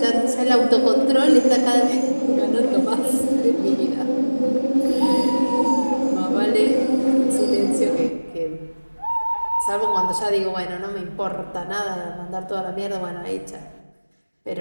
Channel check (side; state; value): both; inverted; correlation -1.00